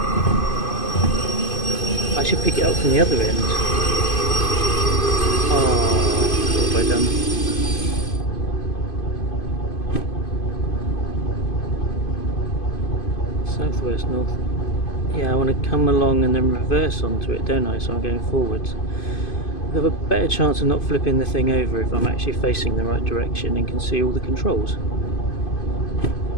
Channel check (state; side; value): late; right; 2.5 ms